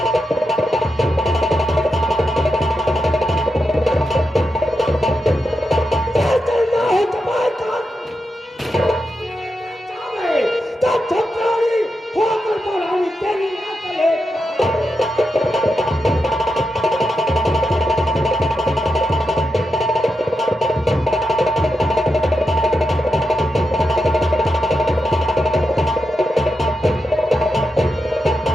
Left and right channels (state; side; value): normal; both; correlation 0.87